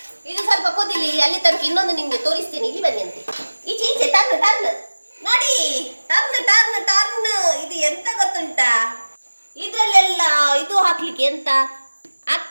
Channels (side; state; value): both; inverted; correlation -1.00